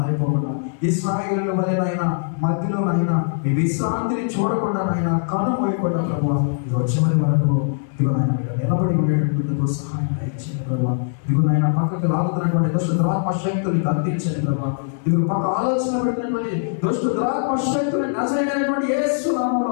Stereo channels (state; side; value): silent; right; digital silence